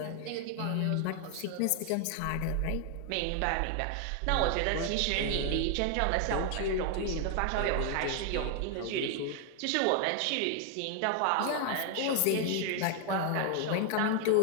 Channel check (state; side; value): different; both; correlation 0.00